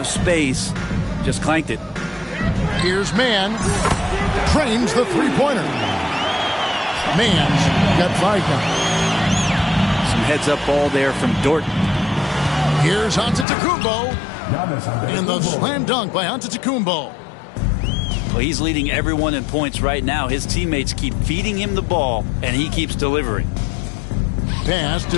space. Just clanked it. Here's Mann. Trains the three-pointer. Mann's got 5 now. Some heads-up ball there from Dort. Here's Antetokounmpo. And the slam dunk by Antetokounmpo. Well, he's leading everyone in points right now. His teammates keep feeding him the ball, and he keeps delivering. Pass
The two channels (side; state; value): right; drops out; at 13.5 s